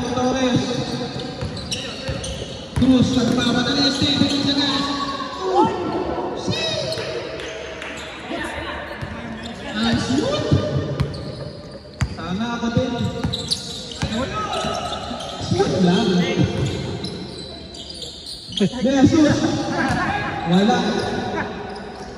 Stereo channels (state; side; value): identical; both; correlation 1.00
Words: ni Torres. Cruz, nagpapadali. Stephen Gonzalez. Ang shoot! Sana ako din. Shoot lang. Jesus! Wala.